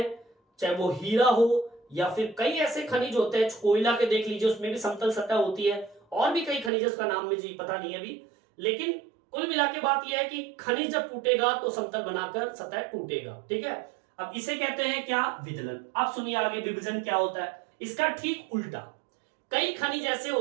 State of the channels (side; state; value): left; drops out; at 6.7 s